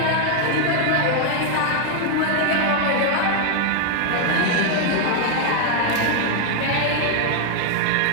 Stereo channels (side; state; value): both; different; correlation 0.00